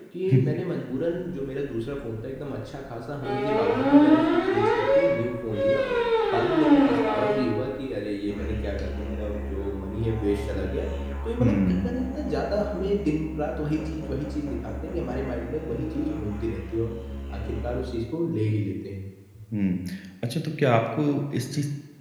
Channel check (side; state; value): both; identical; correlation 1.00